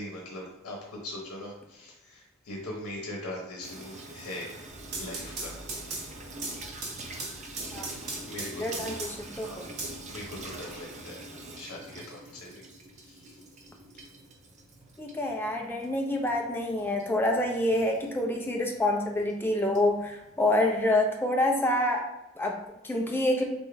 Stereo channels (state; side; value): normal; both; correlation 0.53